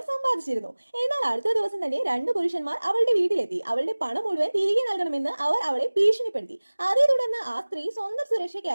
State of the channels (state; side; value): inverted; both; correlation -1.00